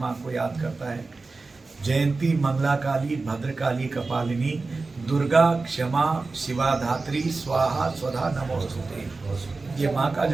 को याद करता है। जयंती मंगला काली, भद्रकाली, कपालिनी, दुर्गा, क्षमा, शिवा धात्री, स्वाहा स्वधा नमोस्तुते। ये माँ का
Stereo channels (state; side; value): quieter; left; 3.8 dB